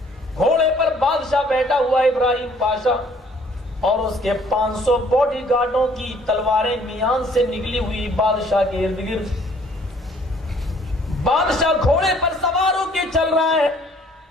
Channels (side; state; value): both; normal; correlation 0.59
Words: گھوڑے پر بادشاہ بیٹھا ہوا ابراہیم پاشا اور اس کے 500 باڈی گارڈوں کی تلواریں میان سے نکلی ہوئی بادشاہ کے ارد گرد. بادشاہ گھوڑے پر سوار ہو کے چل رہا ہے,